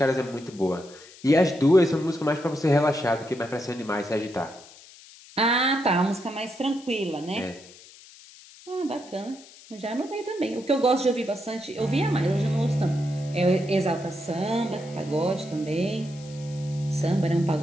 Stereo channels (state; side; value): noise; left; hiss, 21 dB below the sound